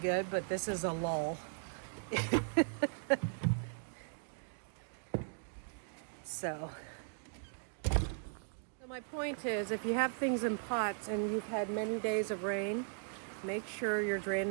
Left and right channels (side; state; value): left; silent; digital silence